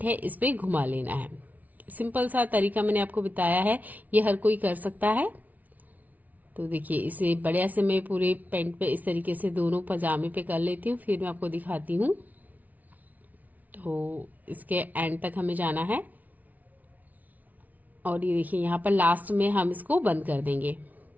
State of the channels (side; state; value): left; late; 0.075 ms